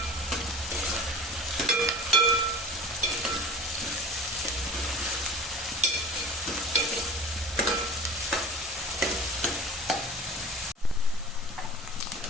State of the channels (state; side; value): normal; both; correlation 0.38